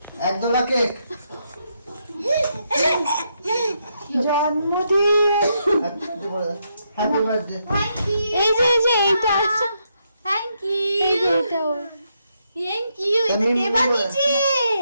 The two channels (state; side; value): inverted; both; correlation -0.79